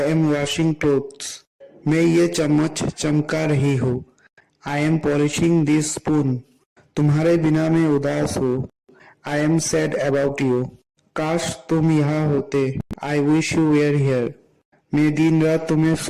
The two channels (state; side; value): identical; both; correlation 1.00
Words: am washing clothes. मैं ये चम्मच चमका रही हूँ. I am polishing this spoon. तुम्हारे बिना मैं उदास हूँ. I am sad about you. काश तुम यहाँ होते. I wish you were here. मैं दिन रात तुम्हें